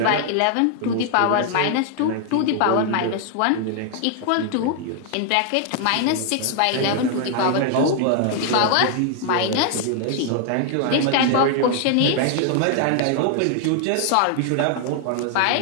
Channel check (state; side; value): different; both; correlation 0.00